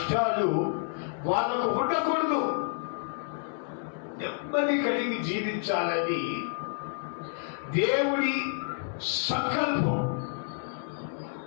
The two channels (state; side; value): silent; right; digital silence